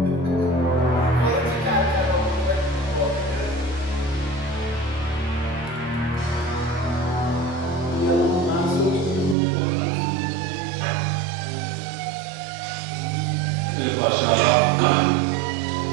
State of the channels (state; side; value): drops out; left; at 9.3 s